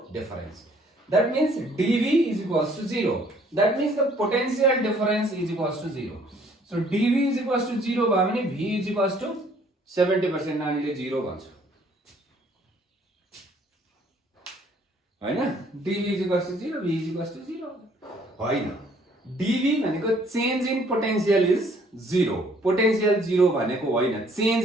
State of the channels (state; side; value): normal; both; correlation 0.61